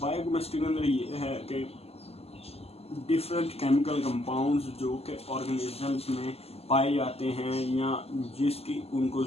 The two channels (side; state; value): right; late; 0.29 ms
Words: बायोकेमिस्ट्री के अंदर ये है कि डिफरेंट केमिकल कंपाउंड्स जो कि ऑर्गेनिजम्स में पाए जाते हैं या जिसकी उनको